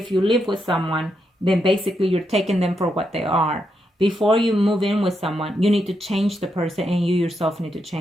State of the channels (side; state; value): both; normal; correlation 0.82